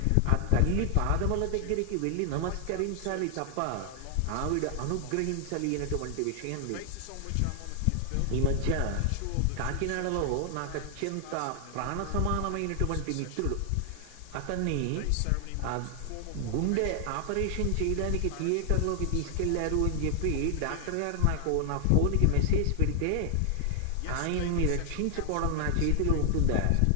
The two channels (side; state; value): both; different; correlation 0.00